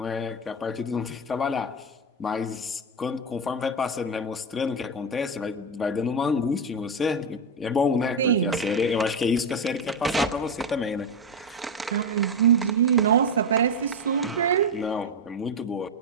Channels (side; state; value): both; normal; correlation 0.10